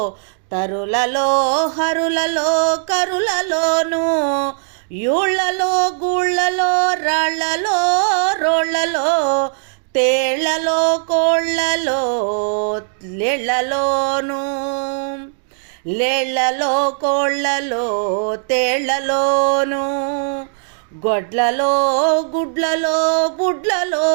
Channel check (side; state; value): left; silent; digital silence